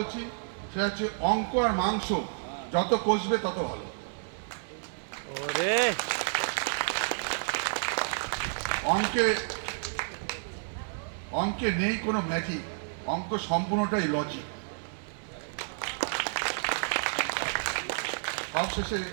সেটা হচ্ছে অঙ্ক আর মাংস যত কষবে তত ভালো। অঙ্কে নেই কোনো ম্যাজিক, অঙ্ক সম্পূর্ণটাই লজিক। সবশেষে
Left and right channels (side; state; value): left; silent; digital silence